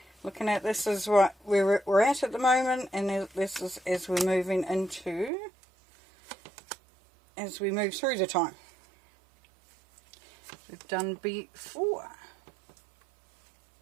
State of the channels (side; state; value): left; drops out; at 5.3 s